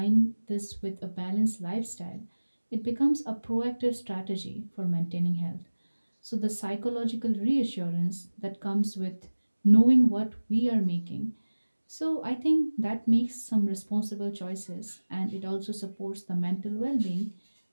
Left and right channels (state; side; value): inverted; both; correlation -1.00